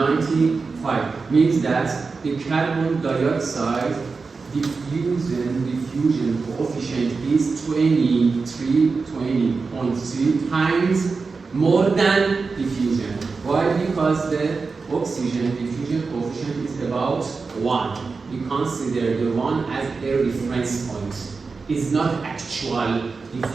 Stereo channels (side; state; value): left; quieter; 4.5 dB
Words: Means that the carbon dioxide diffusion coefficient is 20.3 times more than diffusion. Why? Because the oxygen diffusion coefficient is about 1. We consider the 1 as a reference point. It's not actual